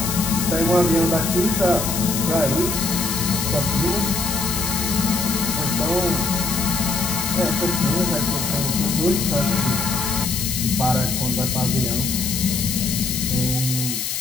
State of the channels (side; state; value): left; noise; hiss, 3 dB below the sound